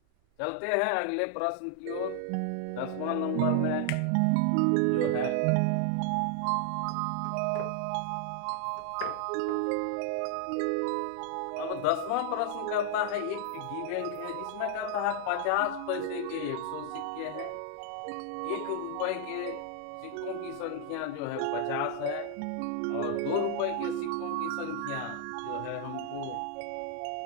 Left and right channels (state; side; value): different; both; correlation 0.00